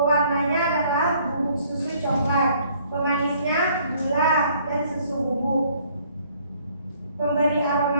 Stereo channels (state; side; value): inverted; both; correlation -0.61